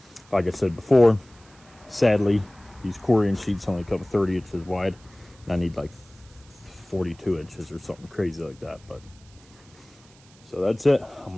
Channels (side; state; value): right; noise; hiss, 27 dB below the sound